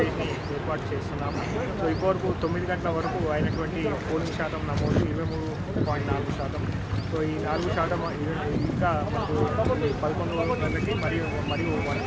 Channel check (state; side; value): identical; both; correlation 1.00